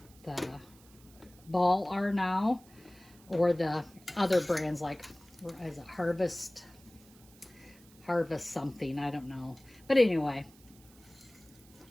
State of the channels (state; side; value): noise; right; hiss, 25 dB below the sound